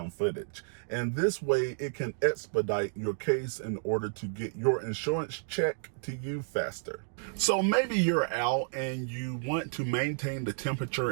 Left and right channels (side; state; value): left; silent; digital silence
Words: footage, and this way it can expedite your case in order to get your insurance check to you faster. So maybe you're out and you want to maintain the